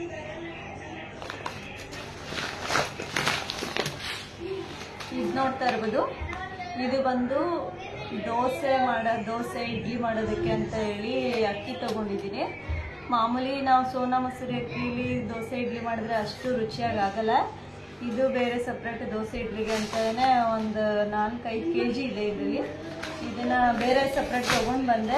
ಇದು ನೋಡ್ತಾ ಇರ್ಬೋದು, ಇದು ಬಂದು ದೋಸೆ ಇಡ್ಲಿ ಮಾಡೋದಕ್ಕೆ ಅಂತ ಹೇಳಿ ಅಕ್ಕಿ ತೊಗೊಂಡಿದ್ದೀನಿ. ಮಾಮೂಲಿ ನಾವು ಸೋನಾ ಮಸೂರಿ ಅಕ್ಕಿಲಿ ದೋಸೆ ಇಡ್ಲಿ ಮಾಡಿದ್ರೆ ಅಷ್ಟು ರುಚಿಯಾಗಿ ಆಗಲ್ಲ. ಇದು ಬೇರೆ ಸಪ್ರೇಟ್ ದೋಸೆ ಇಡ್ಲಿಗೆ ಅಂತಲೇ ಒಂದು 4-5 kg ಇದೆ ಇದರಲ್ಲಿ. ಇದನ್ನು ಬೇರೆ ಸಪ್ರೇಟ್ ತೊಗೊಂಡು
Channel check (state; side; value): identical; both; correlation 1.00